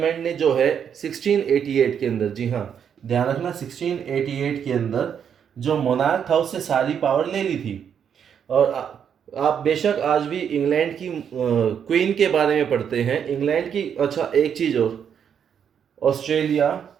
ने जो है 1688 के अंदर, जी हाँ ध्यान रखना, 1688 के अंदर जो मोनार्क था उससे सारी पावर ले ली थी। और आप बेशक आज भी इंग्लैंड की क्वीन के बारे में पढ़ते हैं, इंग्लैंड की। अच्छा एक चीज़ और, ऑस्ट्रेलिया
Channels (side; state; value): left; quieter; 8.0 dB